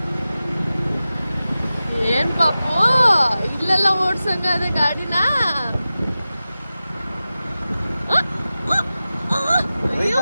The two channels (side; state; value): both; inverted; correlation -0.95